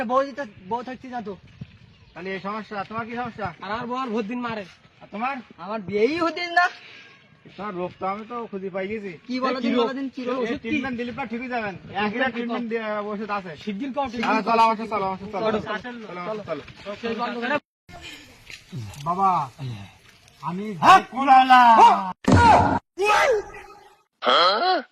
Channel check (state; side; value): identical; both; correlation 1.00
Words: বউ থাকছি না তো তাহলে এই সমস্যা তোমার কি সমস্যা আর আমার বল ভোট দিন মারে আর তোমার আমার বিয়েই হতেন না তোমার রোগ তো আমি তো খুঁজে পাই গেছি কি বলো দিন বলো দিন কি রোগ ট্রিটমেন্ট দিলে পর ঠিকই যাবেন একই ট্রিটমেন্ট ওষুধ আছে শিগগির কর চলো আমার সাথে চলো চলো বাবা আমি